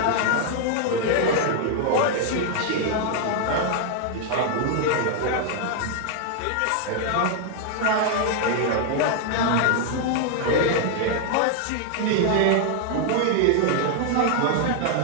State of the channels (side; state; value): both; different; correlation 0.00